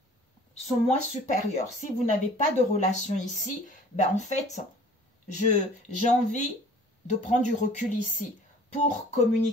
son moi supérieur. Si vous n'avez pas de relation ici, ben en fait, j'ai envie de prendre du recul ici pour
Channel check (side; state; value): both; normal; correlation 0.49